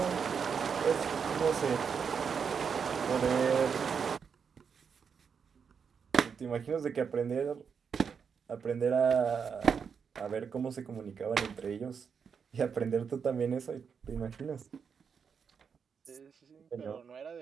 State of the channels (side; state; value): left; quieter; 6.4 dB